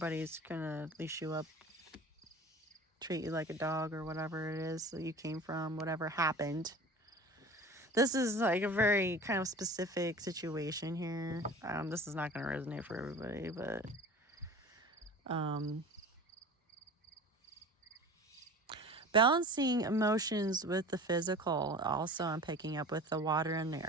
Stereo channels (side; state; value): both; normal; correlation 0.39